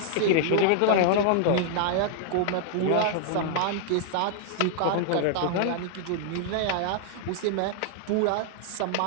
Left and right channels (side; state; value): both; different; correlation 0.00